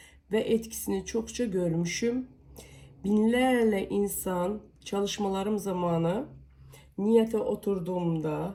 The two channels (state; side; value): identical; both; correlation 1.00